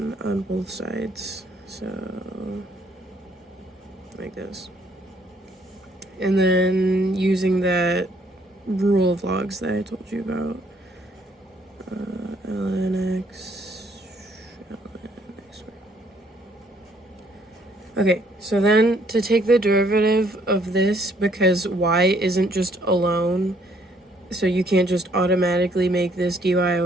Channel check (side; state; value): both; normal; correlation 0.65